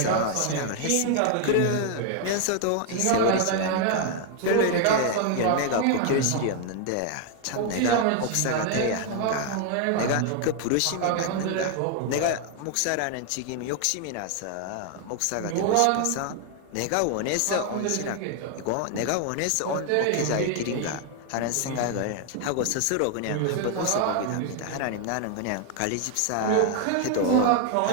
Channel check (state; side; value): different; both; correlation 0.00